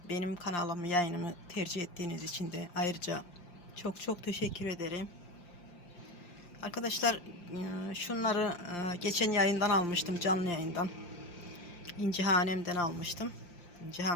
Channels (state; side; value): late; right; 5.7 ms